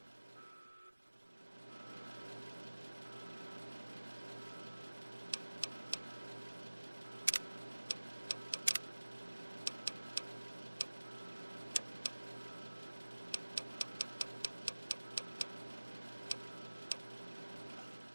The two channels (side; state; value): both; inverted; correlation -1.00